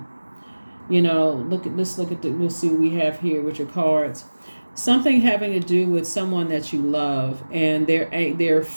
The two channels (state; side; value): inverted; both; correlation -1.00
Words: we'll see what we have here with your cards. Something having to do with someone that you love, and they're